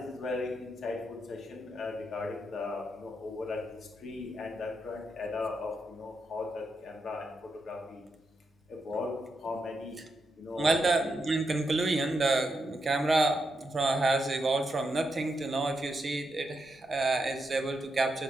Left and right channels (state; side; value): normal; both; correlation 0.83